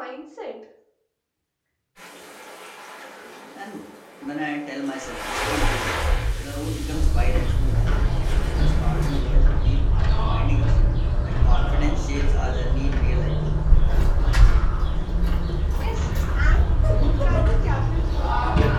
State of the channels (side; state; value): both; identical; correlation 1.00